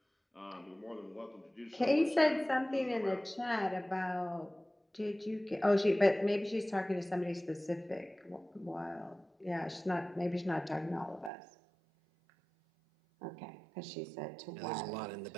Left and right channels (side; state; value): left; drops out; at 11.3 s